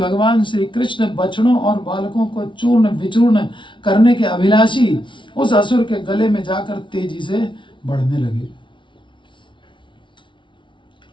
श्री कृष्ण बछड़ों और बालकों को चूर्ण विचूर्ण करने के अभिलाषी उस असुर के गले में जाकर तेजी से बढ़ने लगे।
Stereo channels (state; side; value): late; right; 0.24 ms